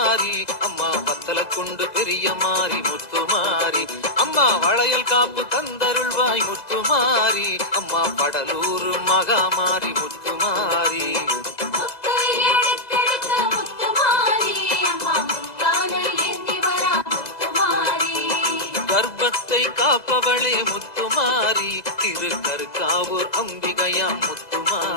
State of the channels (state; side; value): late; right; 2.0 ms